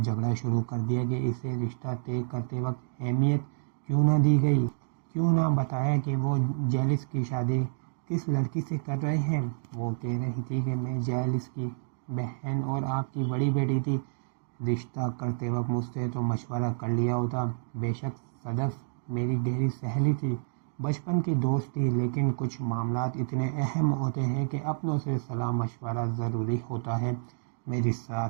شروع کر دیا کہ اسے رشتہ طے کرتے وقت اہمیت کیوں نہ دی گئی، کیوں نہ بتایا کہ وہ جیلس کی شادی کس لڑکی سے کر رہے ہیں۔ وہ کہہ رہی تھی کہ میں جیلس کی بہن اور آپ کی بڑی بیٹی تھی، رشتہ کرتے وقت مجھ سے تو مشورہ کر لیا ہوتا۔ بے شک صدف میری گہری سہیلی تھی، بچپن کی دوست تھی، لیکن کچھ معاملات اتنے اہم ہوتے ہیں کہ اپنوں سے صلاح مشورہ ضروری ہوتا ہے۔ میری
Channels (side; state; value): left; silent; digital silence